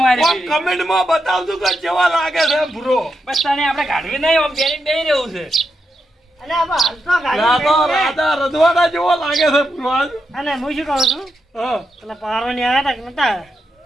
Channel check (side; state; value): both; normal; correlation 0.85